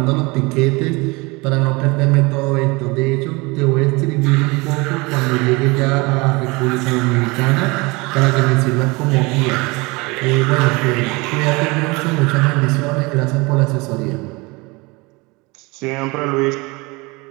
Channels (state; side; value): quieter; left; 25.4 dB